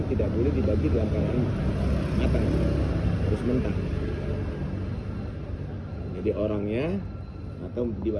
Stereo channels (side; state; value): both; identical; correlation 1.00